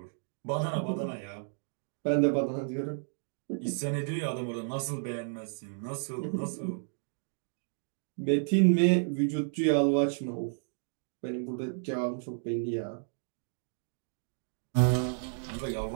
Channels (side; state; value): left; silent; digital silence